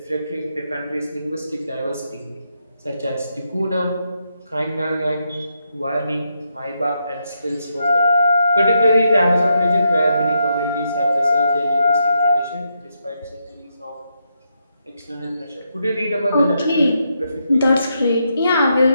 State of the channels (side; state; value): both; inverted; correlation -0.81